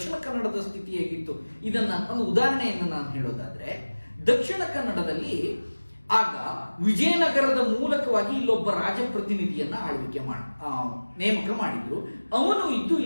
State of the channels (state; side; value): inverted; both; correlation -1.00